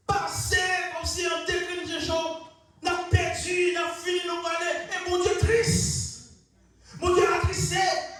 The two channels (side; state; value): both; identical; correlation 1.00